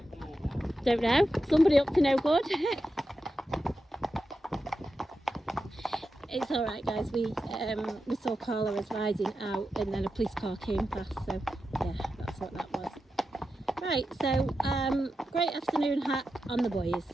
don't know, somebody up to no good. It's alright, guys, we saw Carla was riding out, and then a police car came past, so yeah, that's what that was. Right, so great afternoon hack on the boys.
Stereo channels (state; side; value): normal; both; correlation 0.90